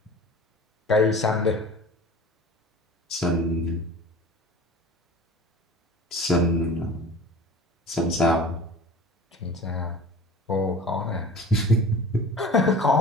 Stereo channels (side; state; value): both; normal; correlation 0.40